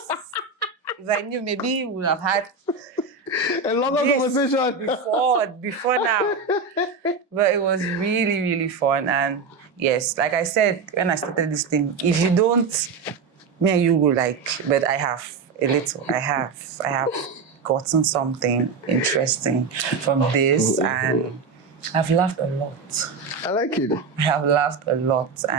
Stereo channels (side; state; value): left; quieter; 4.8 dB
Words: If I knew, maybe we would have had a longer conversation before now. But it was really, really fun. And yes, like I said when I started this thing, if you don't, me and you will but I have a little. I have gotten something interesting from this, and I've laughed a lot. I like it. I have laughed a lot,